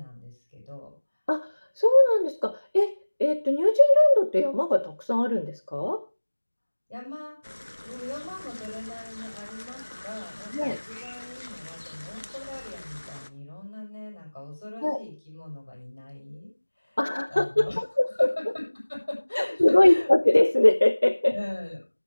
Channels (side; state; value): both; inverted; correlation -1.00